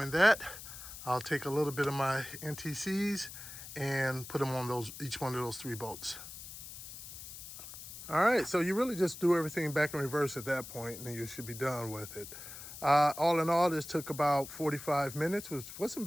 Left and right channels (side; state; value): left; noise; hiss, 12 dB below the sound